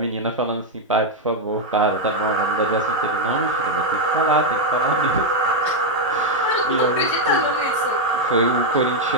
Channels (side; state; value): both; normal; correlation 0.01